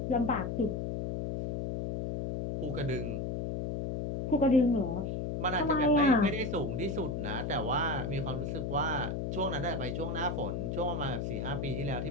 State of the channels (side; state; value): left; noise; hum, 2 dB below the sound